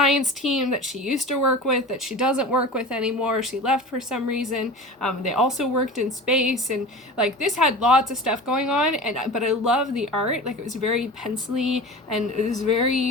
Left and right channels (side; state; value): both; normal; correlation 0.34